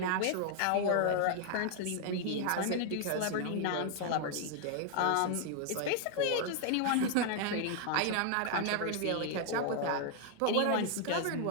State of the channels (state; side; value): different; both; correlation 0.00